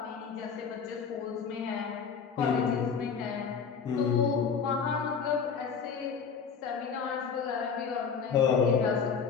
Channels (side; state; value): right; quieter; 6.2 dB